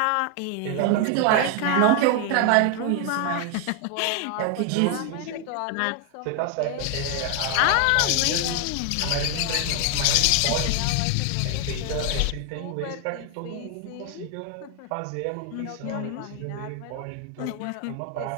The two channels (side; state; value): both; different; correlation 0.00